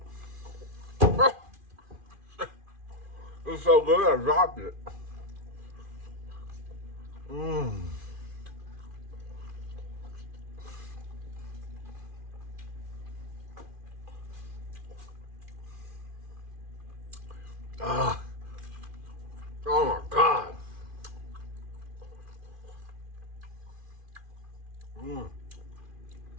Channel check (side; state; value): left; late; 2.4 ms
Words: It's so good, I dropped it. Mmm. Ah. Oh my God. Mmm.